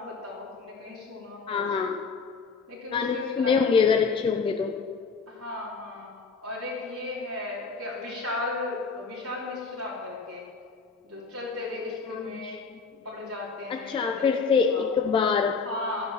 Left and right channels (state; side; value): quieter; right; 4.9 dB